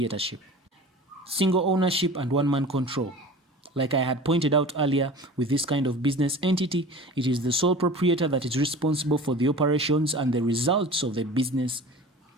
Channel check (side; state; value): both; normal; correlation 0.38